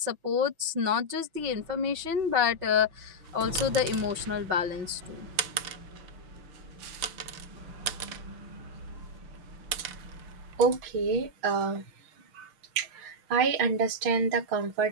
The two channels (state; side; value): late; left; 6.0 ms